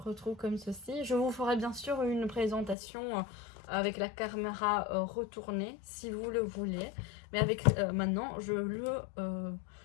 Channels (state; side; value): drops out; right; at 2.8 s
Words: comme ceci. Je vous ferai bien sûr une présentation avec la caméra retournée si vous le voulez. Mais avec maintenant, je le